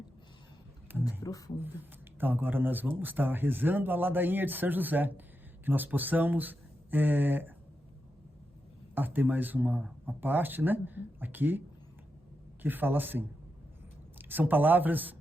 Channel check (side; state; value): both; normal; correlation 0.87